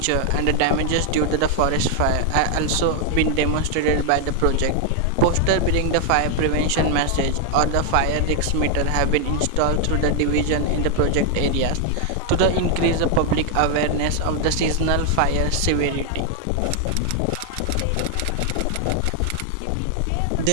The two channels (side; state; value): both; different; correlation 0.00